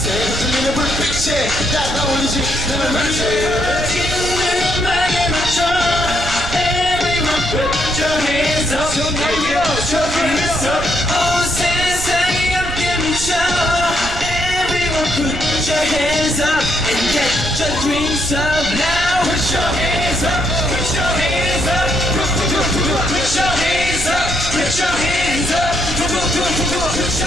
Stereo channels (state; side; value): noise; right; rumble, 8 dB below the sound